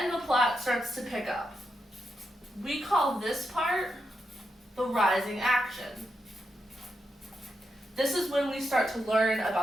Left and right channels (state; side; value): normal; both; correlation 0.85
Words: the plot starts to pick up. We call this part the rising action. This is when we start to learn